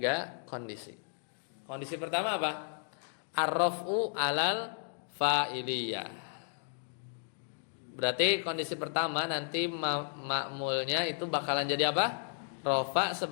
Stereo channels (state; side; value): silent; right; digital silence